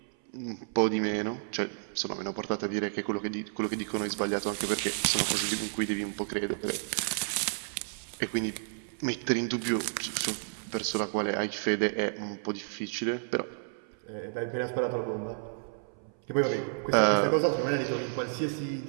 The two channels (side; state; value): left; silent; 57 dB below the other